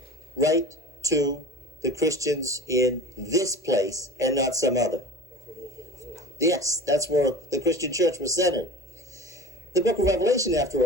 write to the Christians in this place and not some other? Yes, that's where the Christian church was centered. The book of Revelation, after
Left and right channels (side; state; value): both; normal; correlation 0.36